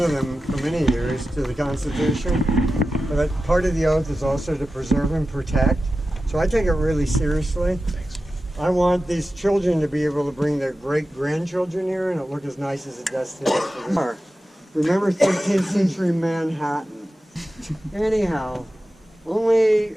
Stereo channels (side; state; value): both; normal; correlation 0.93